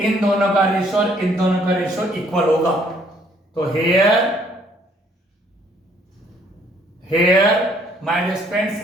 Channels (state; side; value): normal; both; correlation 0.64